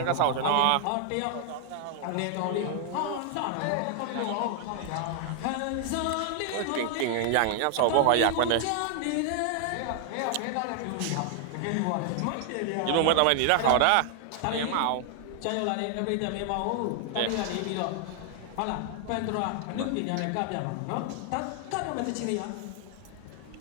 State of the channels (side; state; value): both; different; correlation 0.00